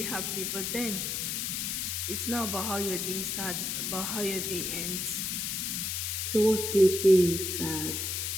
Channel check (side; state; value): left; noise; hiss, 1 dB below the sound